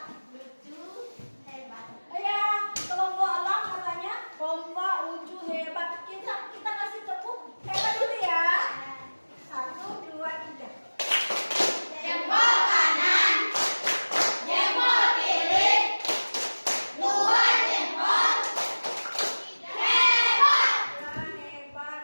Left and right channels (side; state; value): both; inverted; correlation -1.00